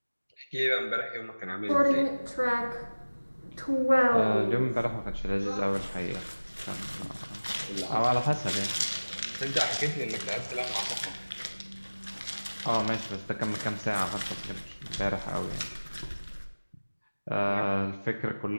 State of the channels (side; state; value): both; inverted; correlation -1.00